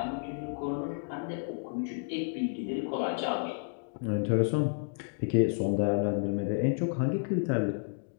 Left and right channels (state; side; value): silent; right; digital silence